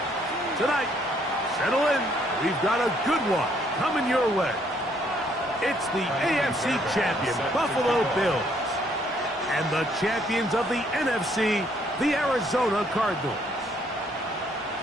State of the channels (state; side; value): normal; both; correlation 0.67